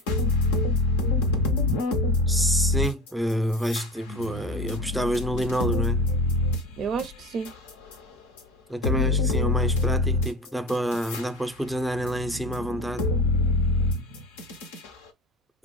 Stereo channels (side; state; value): both; normal; correlation 0.32